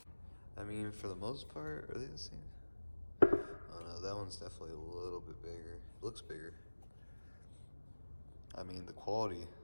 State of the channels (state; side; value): inverted; both; correlation -1.00